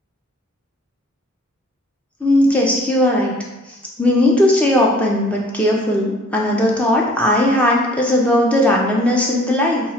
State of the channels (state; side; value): normal; both; correlation 0.54